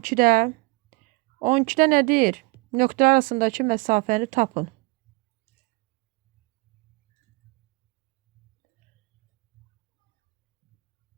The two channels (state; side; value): quieter; left; 25.6 dB